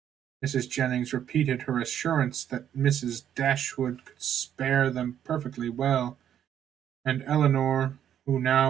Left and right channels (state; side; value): quieter; left; 9.9 dB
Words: Mrs. Jennings repeated her assurance that Mrs. Dashwood could spare them perfectly well, and Eleanor, who